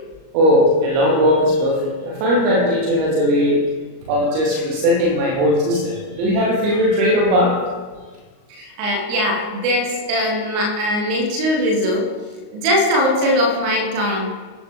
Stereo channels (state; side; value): late; left; 38 ms